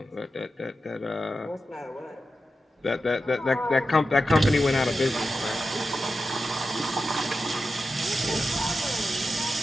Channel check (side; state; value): both; normal; correlation 0.91